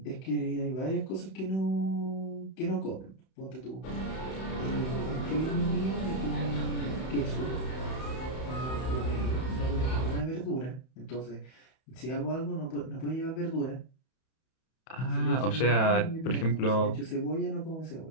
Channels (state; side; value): late; right; 31 ms